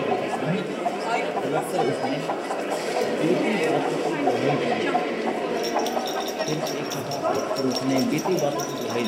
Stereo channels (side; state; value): both; identical; correlation 1.00